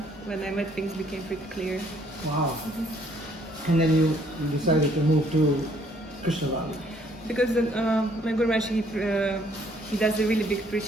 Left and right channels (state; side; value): normal; both; correlation 0.64